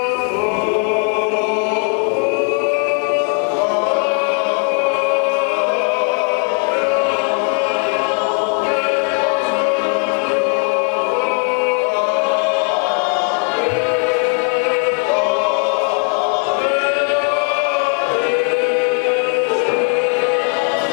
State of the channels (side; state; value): right; quieter; 36.9 dB